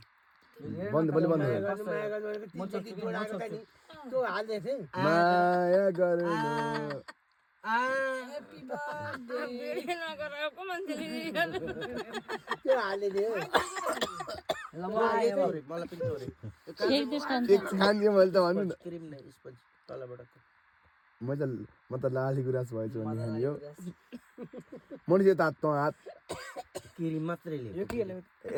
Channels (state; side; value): identical; both; correlation 1.00